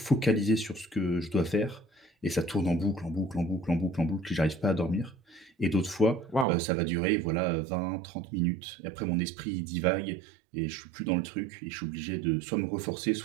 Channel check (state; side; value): drops out; left; at 6.5 s